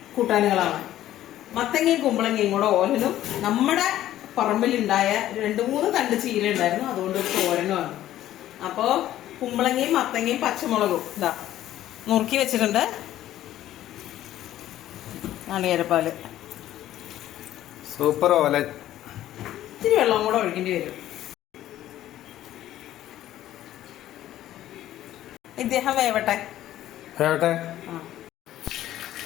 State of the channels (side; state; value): right; quieter; 13.2 dB